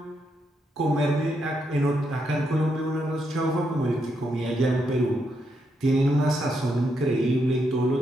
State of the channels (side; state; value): both; normal; correlation 0.80